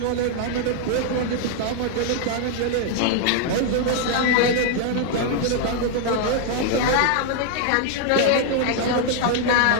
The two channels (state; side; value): different; both; correlation 0.00